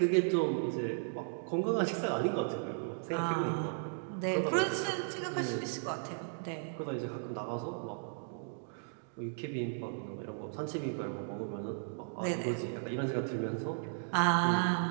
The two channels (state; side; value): silent; left; digital silence